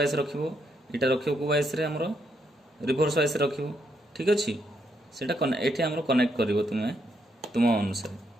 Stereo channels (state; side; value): normal; both; correlation 0.77